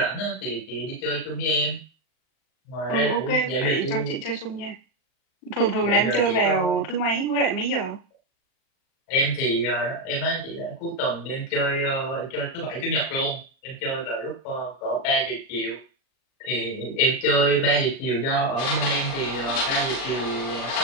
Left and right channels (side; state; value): right; late; 39 ms